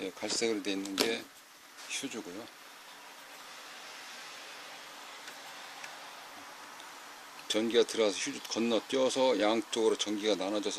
갈색으로 되어 있는 게 휴즈고요. 전기가 들어가서 휴즈 건너뛰어서 양쪽으로 전기가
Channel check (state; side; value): identical; both; correlation 1.00